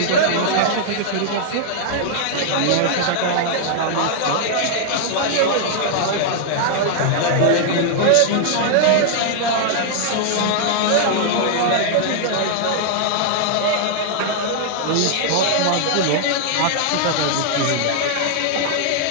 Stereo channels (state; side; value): different; both; correlation -0.01